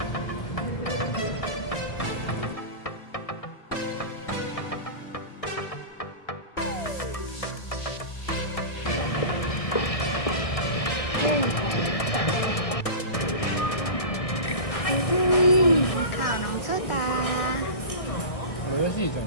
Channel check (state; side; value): late; right; 1.6 ms